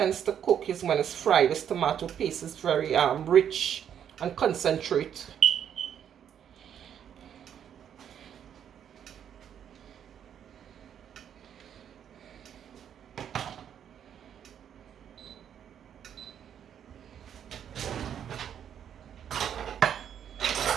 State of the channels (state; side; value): quieter; left; 9.0 dB